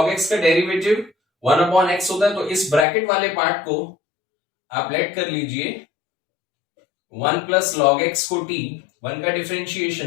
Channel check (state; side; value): drops out; right; at 2.9 s